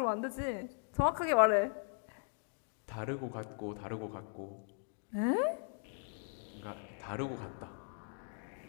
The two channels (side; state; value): right; silent; 52 dB below the other